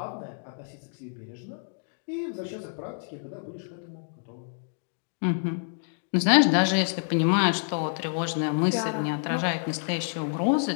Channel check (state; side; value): silent; right; digital silence